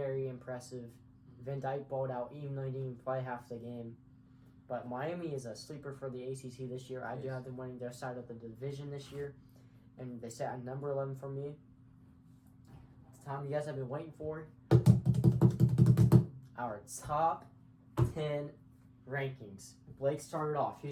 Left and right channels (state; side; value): identical; both; correlation 1.00